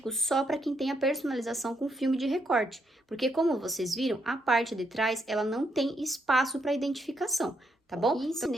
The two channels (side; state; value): both; normal; correlation 0.77